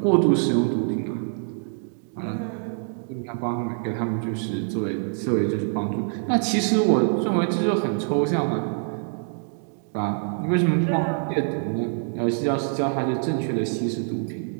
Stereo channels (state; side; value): silent; left; 62 dB below the other